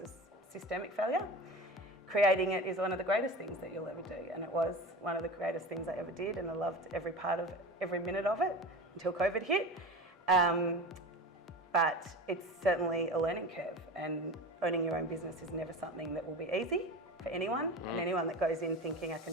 a systemic failure. Creating it is one of the greatest things that you'll ever do, and it was one of the greatest things I ever did, and I loved every minute of it until COVID hit. But it's certainly a learning curve, and owning your own business is never something that will be easy for anyone, and anyone that goes in thinking I can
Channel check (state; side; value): normal; both; correlation 0.31